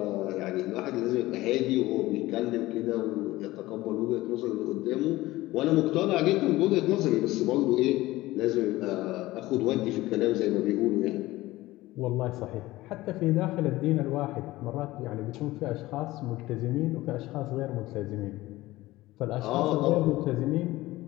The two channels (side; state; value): right; quieter; 18.0 dB